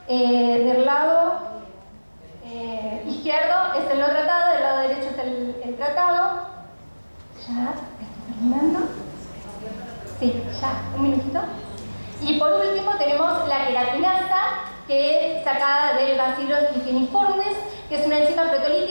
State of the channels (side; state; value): both; inverted; correlation -1.00